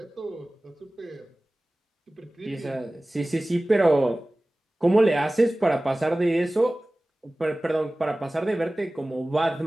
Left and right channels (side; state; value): both; normal; correlation 0.98